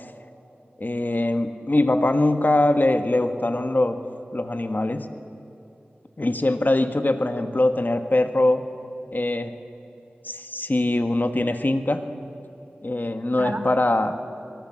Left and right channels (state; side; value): normal; both; correlation 0.95